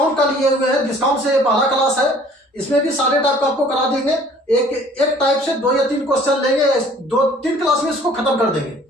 का लिए हुए हैं। डिस्काउंट से पहला क्लास है। इसमें भी सारे टाइप का आपको करा देंगे। एक टाइप से 2 या 3 क्वेश्चन लेंगे। 2-3 क्लास में इसको खत्म कर देंगे।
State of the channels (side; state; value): both; normal; correlation 0.54